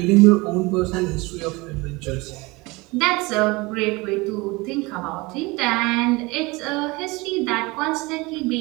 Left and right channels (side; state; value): left; quieter; 23.9 dB